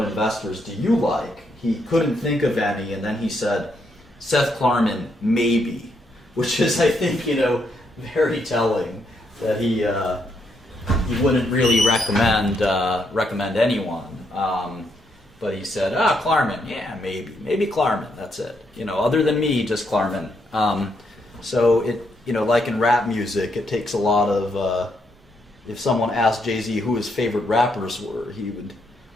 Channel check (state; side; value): normal; both; correlation 0.76